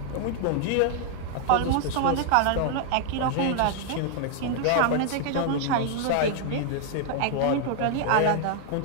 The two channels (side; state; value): both; different; correlation 0.00